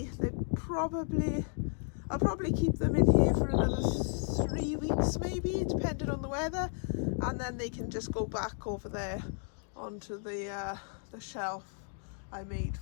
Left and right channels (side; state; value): right; silent; 55 dB below the other